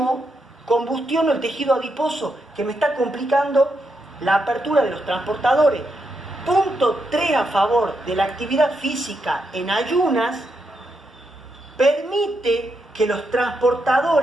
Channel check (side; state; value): both; normal; correlation 0.82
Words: combustiono el tejido adiposo que me está complicando la apertura de los transportadores. Punto 3 a favor de la actividad física en ayunas, permite que los